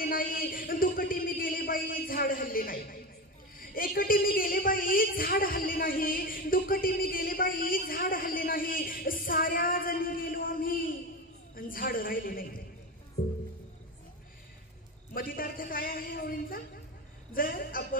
नाही, दुकटी मी गेले बाई झाड हल्ले नाही. एकटी मी गेले बाई झाड हल्ले नाही, दुकटी मी गेले बाई झाड हल्ले नाही. साऱ्या जणी गेलो आम्ही आणि झाड राहिले नाही. मतितार्थ काय आहे ओळींचा? जर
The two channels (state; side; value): normal; both; correlation 0.21